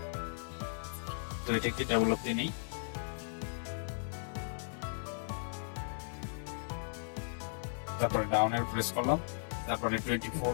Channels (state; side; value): silent; right; digital silence